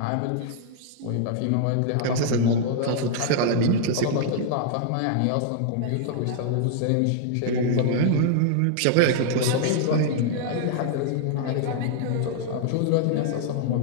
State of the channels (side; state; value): both; different; correlation -0.01